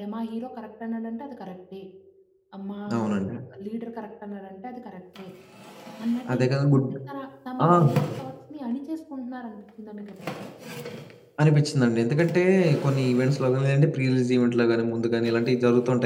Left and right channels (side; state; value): both; identical; correlation 1.00